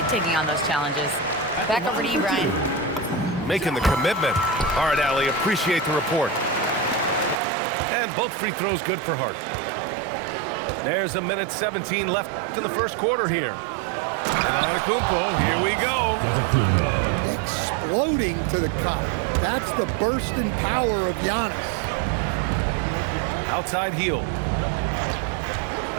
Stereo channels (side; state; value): left; drops out; at 7.4 s